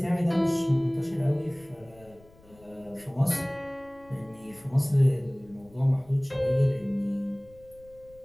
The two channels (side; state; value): left; noise; rumble, 26 dB below the sound